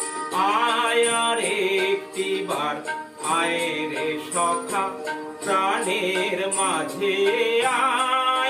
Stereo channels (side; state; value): both; identical; correlation 1.00